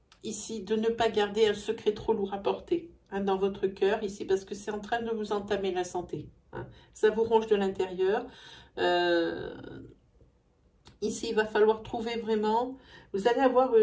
ici de ne pas garder un secret trop lourd à porter dans votre cœur, ici, parce que c'est en train de vous entamer la santé. Ça vous ronge de l'intérieur. Ici, il va falloir trouver vraiment, vous allez avoir,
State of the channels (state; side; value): identical; both; correlation 1.00